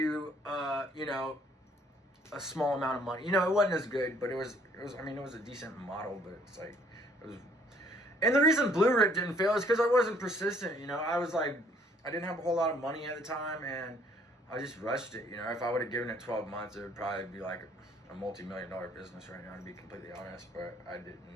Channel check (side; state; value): both; normal; correlation 0.62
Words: you know, a small amount of money. You know, it wasn't as good, but it was I mean, it was a decent model, but it's like, it was. And the reason Blue Rip didn't fail is because I wasn't persistent, you know. I was like, I didn't have a whole lot of money at the time, and I just rushed it, you know. If I would have given it 12 months, it would probably be like a multi-million-dollar business right now, to be completely honest, but I didn't.